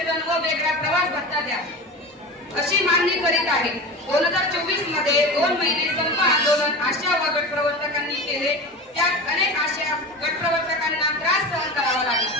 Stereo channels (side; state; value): both; normal; correlation 0.29